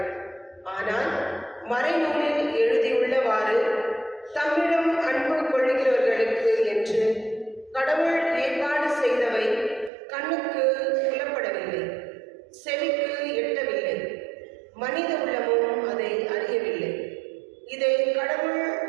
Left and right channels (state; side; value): drops out; left; at 9.9 s